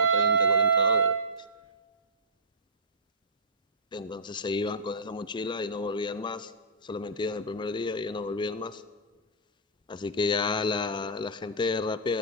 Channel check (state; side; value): normal; both; correlation -0.19